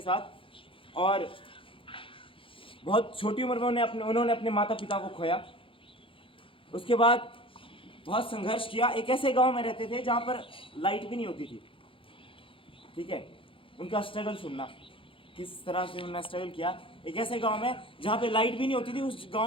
और बहुत छोटी उम्र में उन्होंने अपने माता पिता को खोया। उसके बाद बहुत संघर्ष किया। एक ऐसे गांव में रहते थे जहां पर लाइट भी नहीं होती थी। ठीक है, उनका स्ट्रगल सुनना, किस तरह से उन्होंने स्ट्रगल किया। एक ऐसे गांव में जहाँ पे लाइट भी नहीं होती थी, उस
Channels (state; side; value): late; right; 0.25 ms